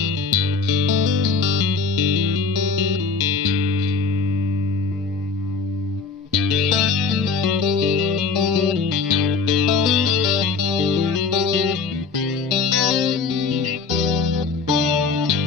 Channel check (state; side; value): quieter; right; 4.6 dB